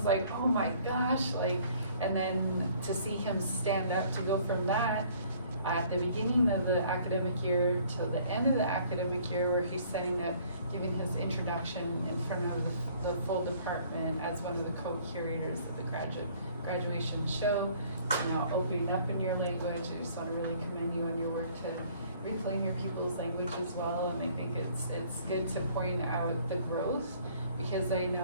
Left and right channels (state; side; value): inverted; both; correlation -0.57